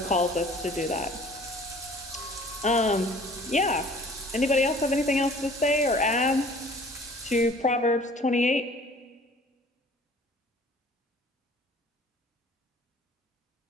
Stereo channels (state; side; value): normal; both; correlation 0.50